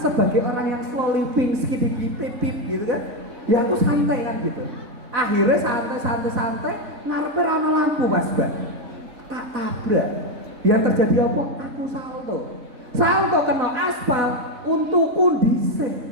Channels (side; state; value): left; late; 4.1 ms